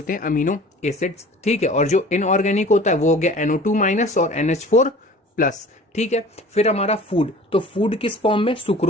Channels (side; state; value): both; normal; correlation 0.45